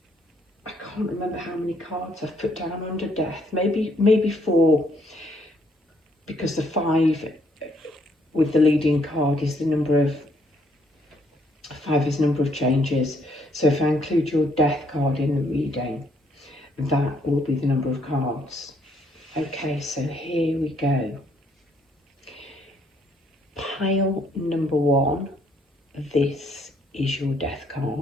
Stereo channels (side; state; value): both; normal; correlation 0.69